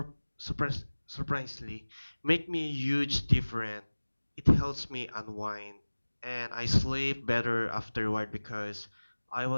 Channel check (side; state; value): both; inverted; correlation -1.00